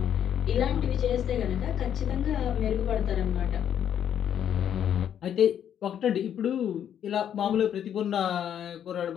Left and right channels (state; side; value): quieter; right; 9.5 dB